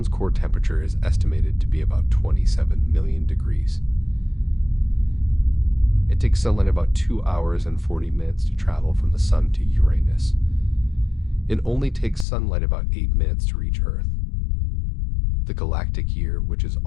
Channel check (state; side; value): drops out; right; at 12.2 s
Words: core temperature is estimated to be about 27 million degrees. It takes sunlight about 2 hours and 40 minutes to travel from the Sun to Uranus. It only takes sunlight about 8 minutes to reach Earth. The galactic year, which is